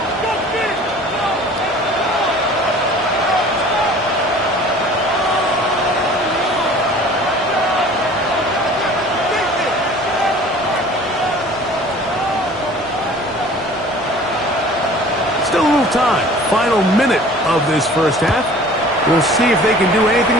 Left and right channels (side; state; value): both; normal; correlation 0.47